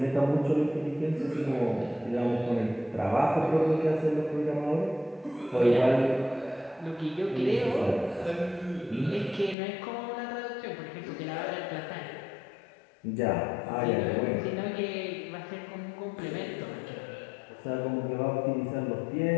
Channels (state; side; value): drops out; right; at 9.6 s